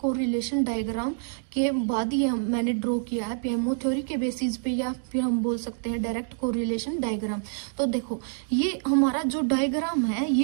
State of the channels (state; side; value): silent; left; digital silence